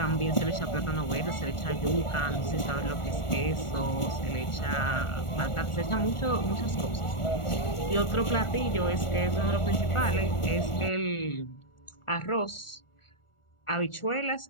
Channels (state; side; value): late; right; 1.4 ms